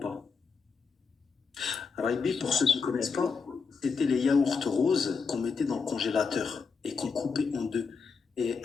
Raibi, pour ceux qui ne connaissent pas, c'était les yaourts roses qu'on mettait dans le congélateur et qu'on coupait en deux. Et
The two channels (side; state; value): right; quieter; 5.2 dB